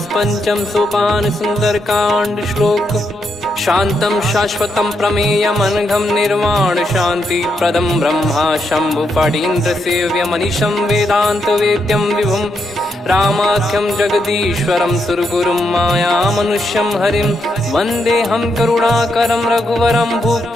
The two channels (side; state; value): both; normal; correlation 0.81